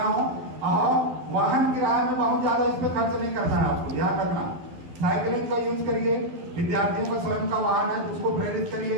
हूं। और वाहन किराए में बहुत ज्यादा इस पे खर्च नहीं करना है, आपको ध्यान रखना। साइकिलिंग का यूज करिए, विद्यार्थियों का स्वयं का वाहन है उसको प्रेरित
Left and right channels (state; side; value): late; left; 12 ms